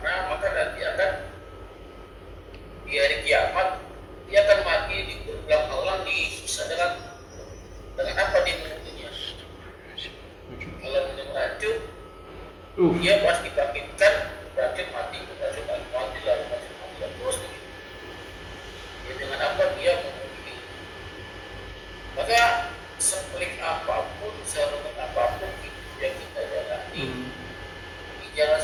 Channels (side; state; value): both; identical; correlation 1.00